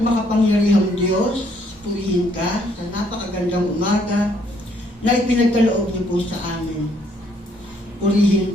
makapangyarihang Diyos, purihin ka sa napakagandang umaga na ipinagkaloob niyo po sa amin. Purihin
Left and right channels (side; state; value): both; normal; correlation 0.68